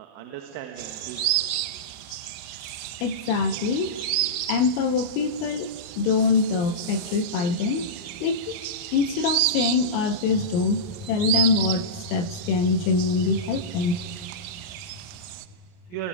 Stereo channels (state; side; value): late; right; 27 ms